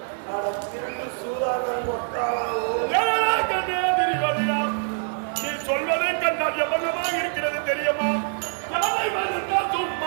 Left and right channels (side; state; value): left; silent; 62 dB below the other